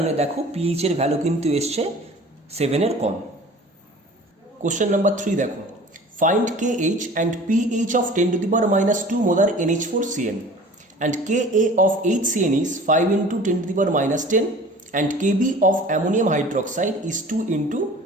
দেখো পিএইচ এর ভ্যালু কিন্তু এসছে 7 এর কম। কোশ্চেন নাম্বার 3 দেখো, find KH and PH of 10⁻² molar NH4CN and Ka of HCN is 5 × 10⁻10 and Kb of ammonium hydroxide is 2 ×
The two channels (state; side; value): normal; both; correlation 0.44